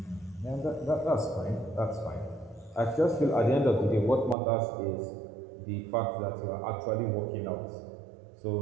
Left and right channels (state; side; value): drops out; left; at 4.4 s